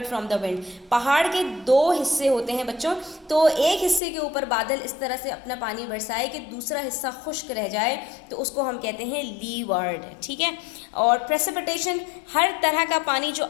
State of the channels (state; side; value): drops out; right; at 4.0 s